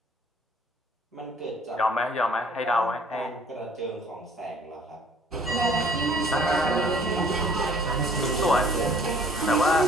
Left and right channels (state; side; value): normal; both; correlation 0.56